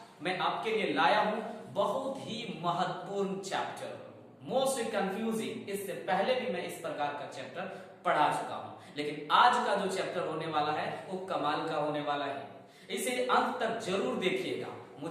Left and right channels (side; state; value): both; identical; correlation 1.00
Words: मैं आपके लिए लाया हूं बहुत ही महत्वपूर्ण चैप्टर, मोस्ट कंफ्यूजिंग। इससे पहले भी मैं इस प्रकार का चैप्टर पढ़ा चुका हूं, लेकिन आज का जो चैप्टर होने वाला है वो कमाल का होने वाला है। इसे अंत तक जरूर देखिएगा।